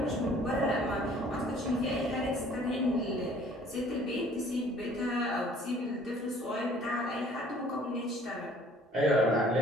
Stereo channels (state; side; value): normal; both; correlation 0.55